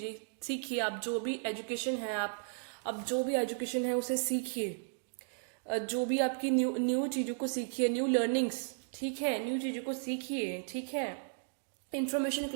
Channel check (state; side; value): silent; left; digital silence